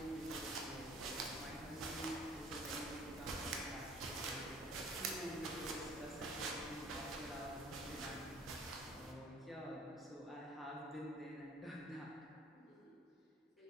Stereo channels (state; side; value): normal; both; correlation 0.52